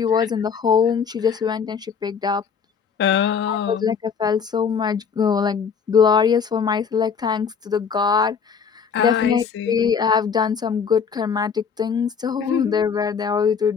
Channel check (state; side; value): quieter; right; 6.4 dB